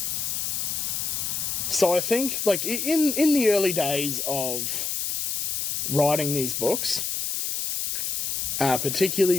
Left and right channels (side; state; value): left; noise; hiss, 1 dB below the sound